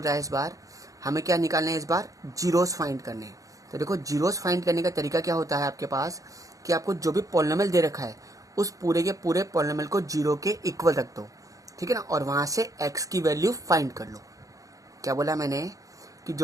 रहा है, इस बार हमें क्या निकालना है, इस बार जीरोस फाइंड करने हैं। तो देखो जीरोस फाइंड करने का तरीका क्या होता है आपके पास कि आपको जो भी पॉलिनोमियल दे रखा है उस पूरे के पूरे पॉलिनोमियल को जीरो के इक्वल रख दो, ठीक है ना, और वहां से एक्स की वैल्यू फाइंड कर लो। क्या बोला मैंने कि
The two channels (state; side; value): late; left; 0.16 ms